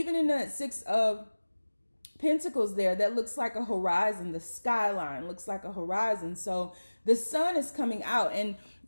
in that Six of Pentacles there, that looks like a horizon. The skyline looks like a horizon. So the sun is coming out. And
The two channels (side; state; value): both; inverted; correlation -1.00